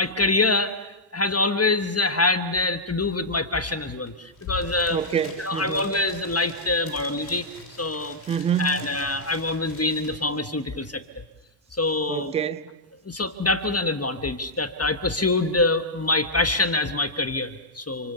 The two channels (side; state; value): both; normal; correlation -0.10